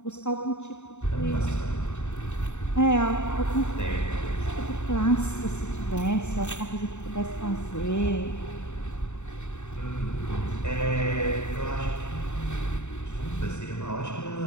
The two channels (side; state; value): right; late; 0.83 ms